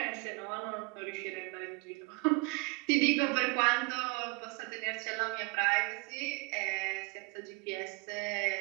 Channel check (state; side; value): quieter; left; 28.2 dB